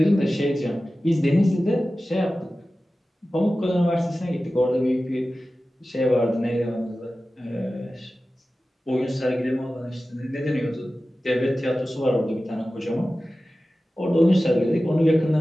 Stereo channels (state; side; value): normal; both; correlation 0.95